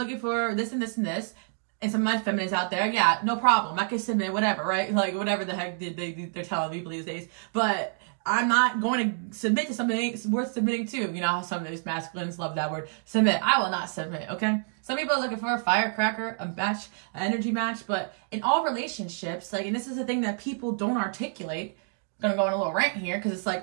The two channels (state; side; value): silent; left; 57 dB below the other